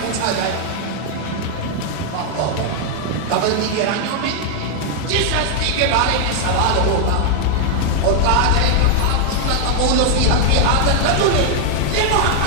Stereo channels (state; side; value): different; both; correlation 0.00